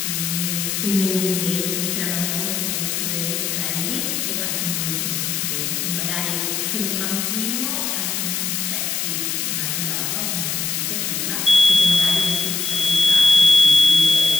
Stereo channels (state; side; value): noise; left; hiss, 1 dB below the sound